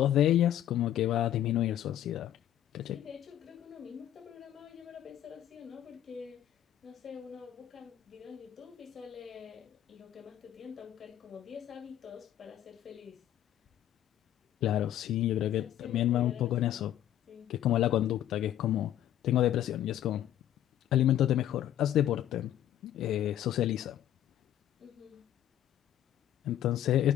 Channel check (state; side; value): quieter; right; 11.8 dB